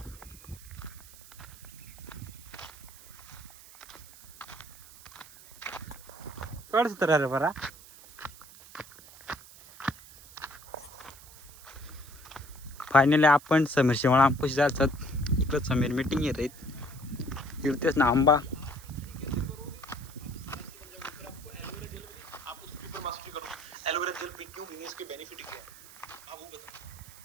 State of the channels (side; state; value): right; noise; hiss, 19 dB below the sound